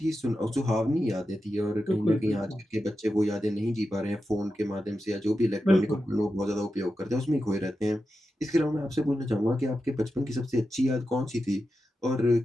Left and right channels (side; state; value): both; normal; correlation 0.90